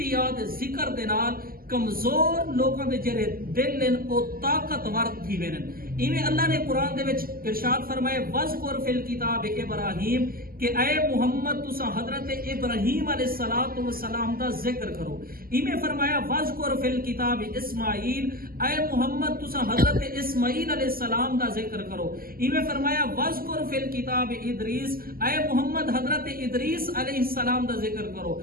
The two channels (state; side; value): late; left; 0.42 ms